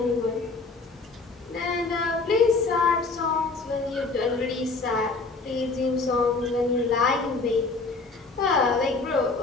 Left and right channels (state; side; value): quieter; right; 3.9 dB